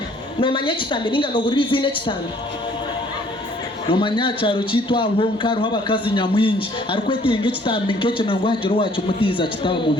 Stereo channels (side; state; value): both; normal; correlation 0.59